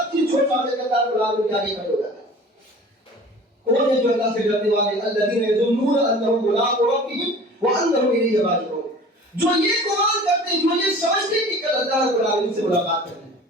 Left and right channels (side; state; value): both; normal; correlation 0.43